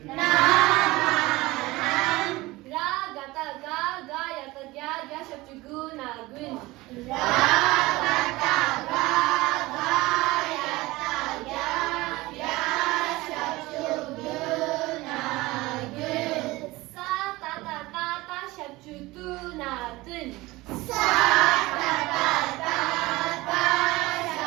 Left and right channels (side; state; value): left; quieter; 20.3 dB